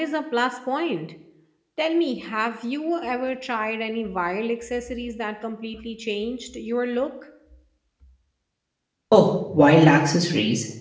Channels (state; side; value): identical; both; correlation 1.00